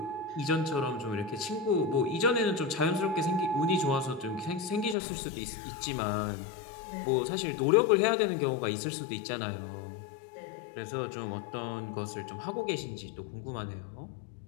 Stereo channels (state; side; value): drops out; right; at 5.0 s